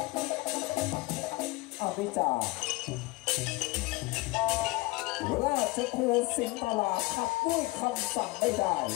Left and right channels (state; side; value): quieter; right; 22.2 dB